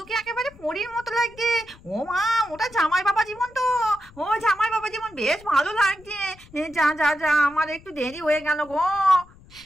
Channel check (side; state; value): left; noise; rumble, 23 dB below the sound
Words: একেবারে পরীর মতো লাগছে। ও মা, ওটা জামাই বাবা জীবন তো। ও জামাই বাবা জীবন, বেশ ভালো লাগছে। যা যা যা, আমার একটু দেরি হয়ে গেল গো।